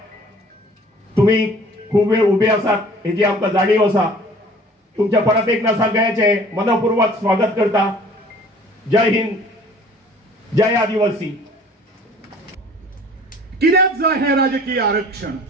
तुम्ही खूप वेळ उभे आसात हेची आमकां जाणीव आसा. तुमच्या परत एकदा सगळ्यांचे मनपूर्वक स्वागत करता. जय हिंद, जय आदिवासी. कित्याक जाय हे राजकीय आरक्षण?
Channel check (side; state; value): both; normal; correlation 0.50